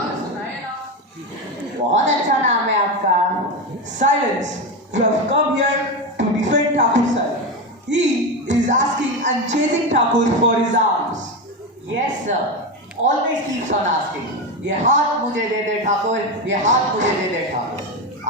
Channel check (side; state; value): both; normal; correlation 0.16